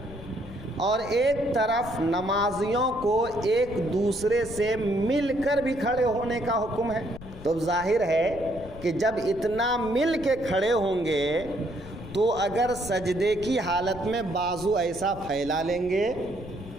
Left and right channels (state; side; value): noise; left; rumble, 15 dB below the sound